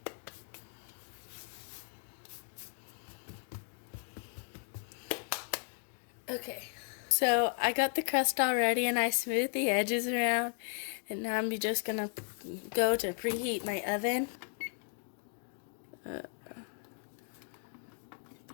Okay, so I got the crust all ready and I smoothed the edges around, and now I'm just gonna go to preheat my oven.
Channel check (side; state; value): right; silent; 54 dB below the other